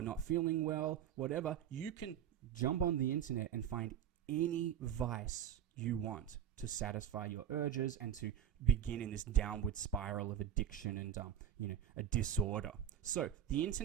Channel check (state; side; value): quieter; left; 9.8 dB